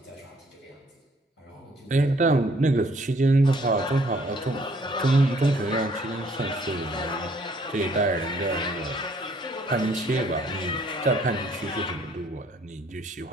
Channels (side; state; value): both; normal; correlation 0.62